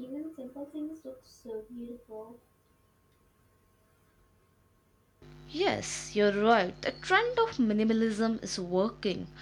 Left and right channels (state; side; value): identical; both; correlation 1.00